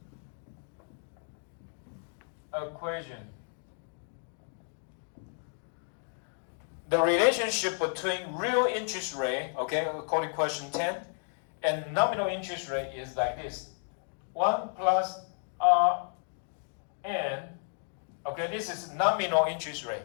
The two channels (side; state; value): right; silent; 56 dB below the other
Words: equation. The relationship between real interest rate, okay, according to question 10, and nominal interest rate is like this. 1 plus Rn, okay, this is nominal interest rate.